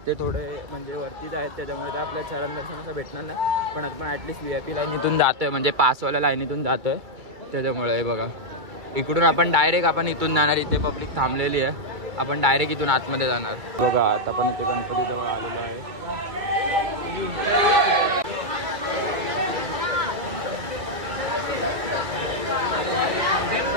ते थोडे म्हणजे वरतीच आहेत त्याच्यामुळे ते आपल्याला चरण दर्शन असं भेटणार नाही. पण आपण ॲटलिस्ट VIP लाईनीतून जातोय म्हणजे पासवाल्या लाईनीतून जातोय त्याच्यामुळे. हे बघा इकडून आपण डायरेक्ट आपण इथून जाणार. इथे पब्लिक थांबलेली आहे. आपण डायरेक्ट इथून आतमध्ये जाणार. बघा आता आपण इथे गणपतीजवळ आलेलो आहे.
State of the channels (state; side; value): late; left; 2.3 ms